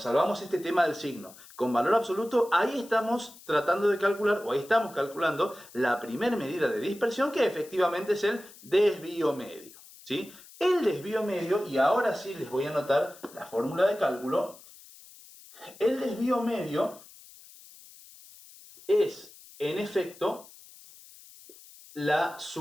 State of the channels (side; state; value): left; noise; hiss, 21 dB below the sound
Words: este tema del signo con valor absoluto, ahí estamos tratando de calcular, o ahí estamos calculando la primera medida de dispersión, que efectivamente es el desvío medio, ¿sí? El desvío medio, y ahora sí les voy a anotar la fórmula de cálculo, el desvío medio es, en efecto, la